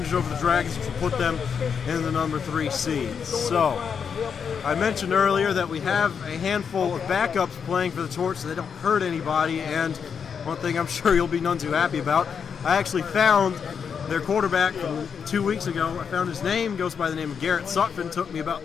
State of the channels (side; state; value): right; quieter; 6.7 dB